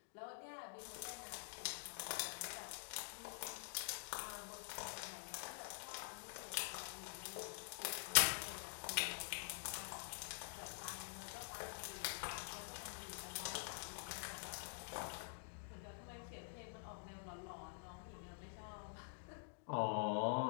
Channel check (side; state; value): right; silent; digital silence